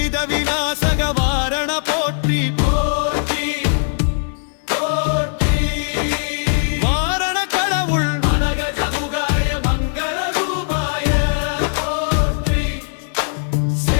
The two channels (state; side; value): silent; right; 66 dB below the other